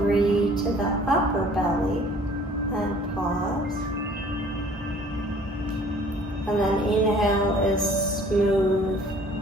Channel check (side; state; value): both; normal; correlation 0.53